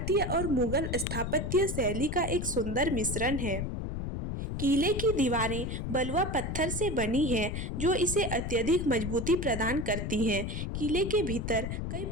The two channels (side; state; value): left; noise; rumble, 3 dB below the sound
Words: और मुगल स्थापत्य शैली का एक सुंदर मिश्रण है। किले की दीवारें बलुआ पत्थर से बनी हैं, जो इसे अत्यधिक मजबूती प्रदान करती हैं। किले के भीतर कई